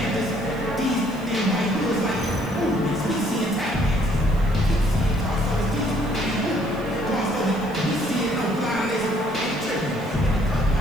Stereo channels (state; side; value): noise; right; hiss, 25 dB below the sound